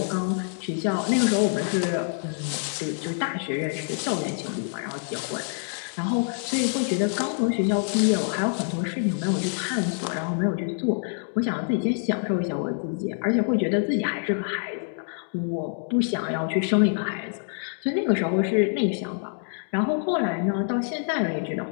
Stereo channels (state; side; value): silent; right; 61 dB below the other